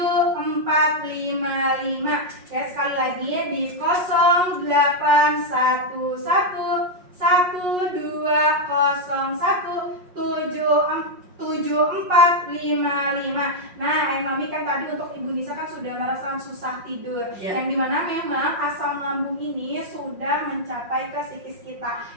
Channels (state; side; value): late; left; 5.5 ms